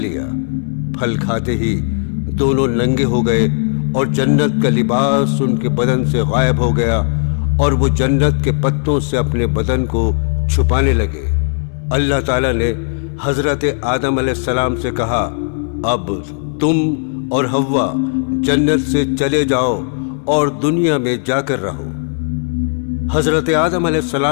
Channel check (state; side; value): silent; right; 62 dB below the other